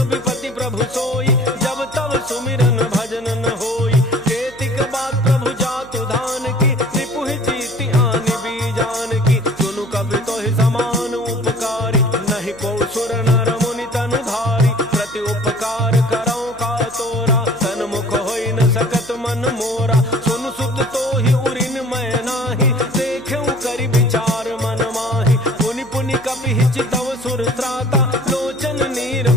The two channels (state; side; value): noise; right; hum, 21 dB below the sound